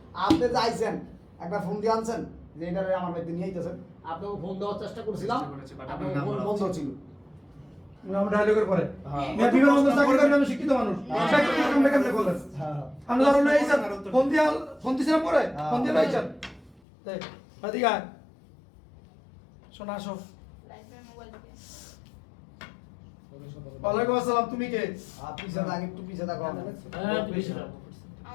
আপনি যাইছেন একটা ফোন দিয়ে আনছেন যে এটা আমার বাড়িতে নিয়ে আইতেছেন আপনাকে ফোন দেওয়ার চেষ্টা করছিলাম চেষ্টা করেছি, but আপনার আপনার ফোন নাম্বার বন্ধ আছে। ছিল আমরা ডায়লগের পরে হ্যাঁ। মেয়ে বিমান বন্ধ চাকরি করেন আমি শিক্ষিত মানুষ চাকরি কেমনে কেমনে করলেন আমরা ধরো লইছেন ফোন দিছিলাম পরে ফোন দিয়ে লইছেন দেখ এদিকে আয় শোনা আসো ওয়ালাইকুম আসসালাম তুমি কে পিছে থাক একটু পিছে থাকো আমার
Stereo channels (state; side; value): drops out; right; at 16.8 s